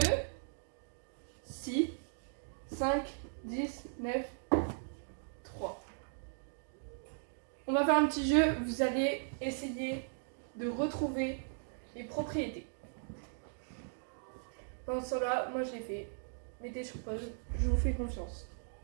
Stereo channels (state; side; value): silent; left; digital silence